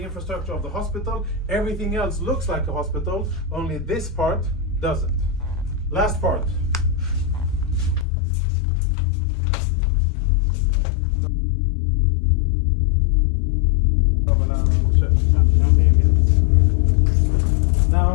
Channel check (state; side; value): drops out; right; at 8.1 s